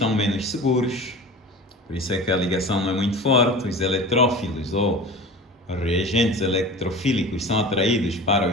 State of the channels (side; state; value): both; normal; correlation 0.36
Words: menos seguros, por isso é que a ligação não é muito forte. Os eletrófilos ou reagentes electrofílicos são atraídos para